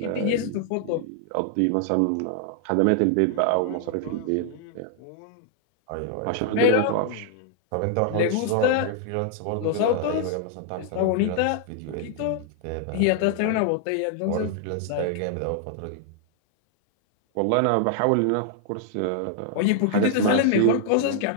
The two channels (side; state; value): both; different; correlation 0.00